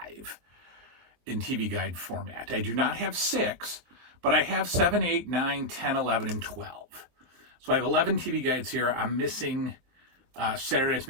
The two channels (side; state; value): left; late; 23 ms